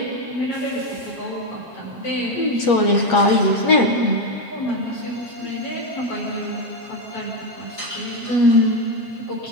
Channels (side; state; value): right; late; 7.4 ms